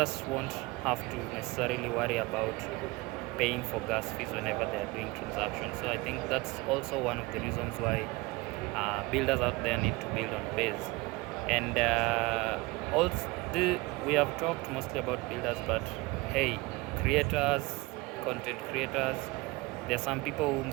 won't have to necessarily worry about paying for gas fees whenever they are doing transactions. So I think that's also one of the reasons why builders out there need to build on base. And also, we have talked mostly about builders, but hey, creators, content creators, there are some people who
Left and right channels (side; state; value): left; quieter; 23.1 dB